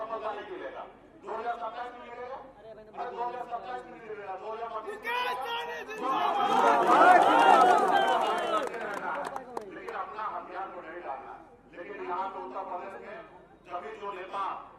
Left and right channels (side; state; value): both; identical; correlation 1.00